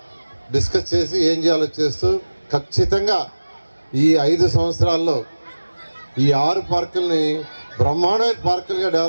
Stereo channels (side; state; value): both; inverted; correlation -1.00